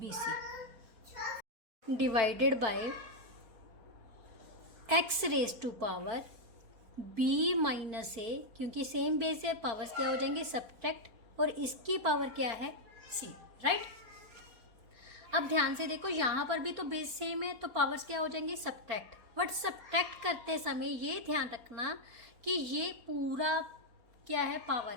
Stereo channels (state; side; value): late; left; 4.2 ms